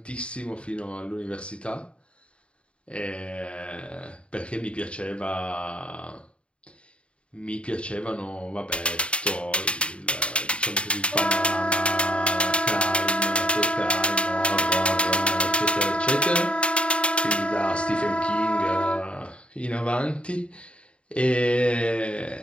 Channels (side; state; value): right; late; 0.058 ms